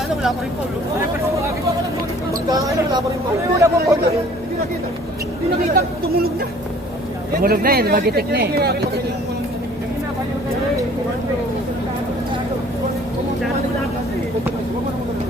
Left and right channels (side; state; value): both; normal; correlation 0.54